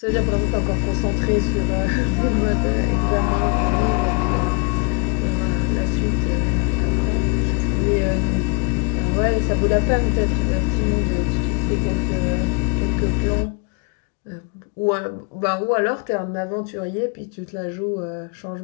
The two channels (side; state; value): right; quieter; 30.9 dB